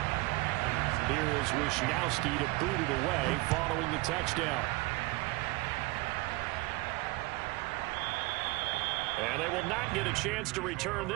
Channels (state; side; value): quieter; left; 22.5 dB